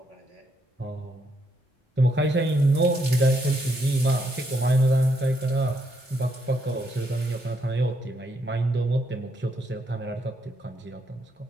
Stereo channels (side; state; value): both; normal; correlation 0.76